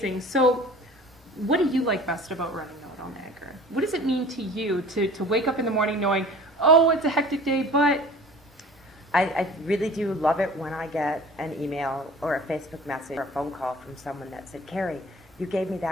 So what do you like best about running Know-It-All Niagara? What does it mean to you to wake up in the morning knowing, oh, it's a hectic day, but... I really do love it when I get an email or a Facebook message or a phone call from someone that said, Carrie, you gave me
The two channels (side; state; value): both; normal; correlation 0.44